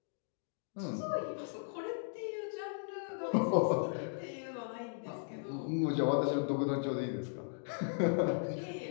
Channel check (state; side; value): silent; right; digital silence